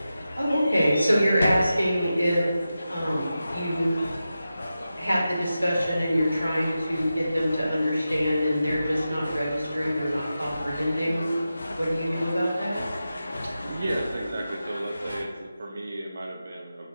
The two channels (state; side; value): inverted; both; correlation -0.92